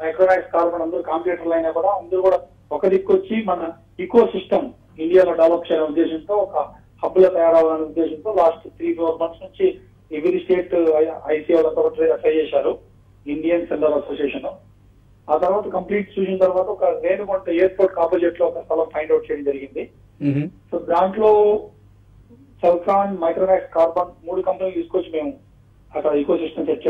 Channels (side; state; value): both; identical; correlation 1.00